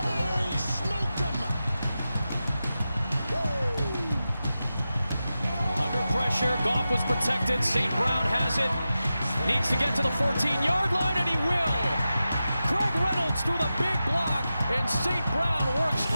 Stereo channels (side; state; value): both; inverted; correlation -0.92